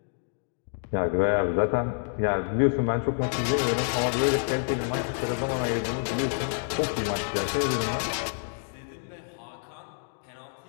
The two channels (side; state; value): right; silent; digital silence